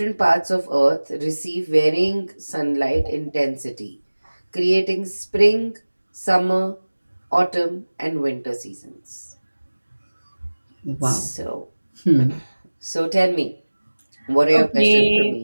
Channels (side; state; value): both; inverted; correlation -1.00